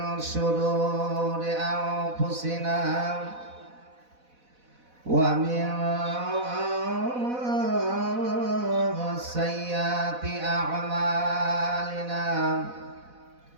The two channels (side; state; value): left; late; 4.1 ms